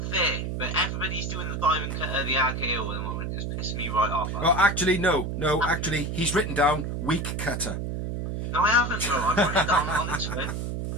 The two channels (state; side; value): noise; right; hum, 3 dB below the sound